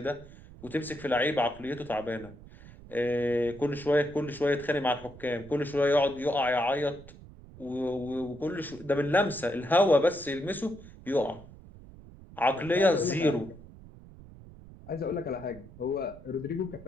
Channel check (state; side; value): noise; right; rumble, 19 dB below the sound